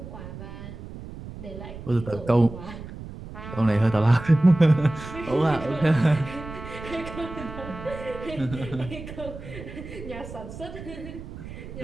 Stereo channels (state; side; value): noise; right; rumble, 12 dB below the sound